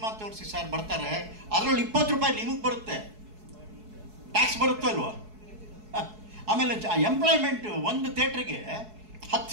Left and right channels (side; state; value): left; late; 4.7 ms